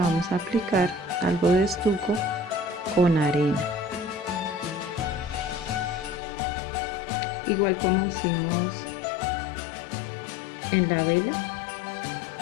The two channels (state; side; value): drops out; right; at 6.2 s